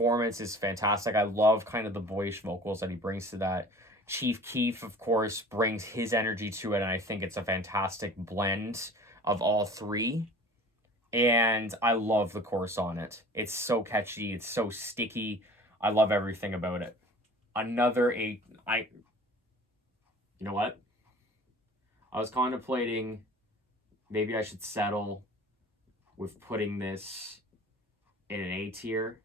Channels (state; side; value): normal; both; correlation 0.44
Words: is fantastic. I love kind of the boyish vocals that he brings to that. Chief Keef, of course, brings his energy to it, and I think it's a fantastic blend of all three. And I love the chorus on it. It's so catchy. It's so sticky. I love everything about it. You know what? I was contemplating maybe I should settle with putting this in an A tier.